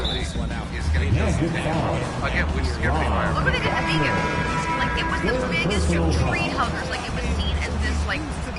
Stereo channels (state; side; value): identical; both; correlation 1.00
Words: you this one out. socially is going to kill you. Again, which is going to be fire. Look what they did to vegan. Like it was the biggest tree huggers. Like it was seen as this like